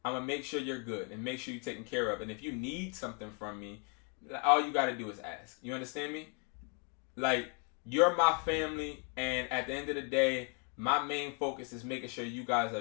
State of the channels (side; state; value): right; quieter; 34.6 dB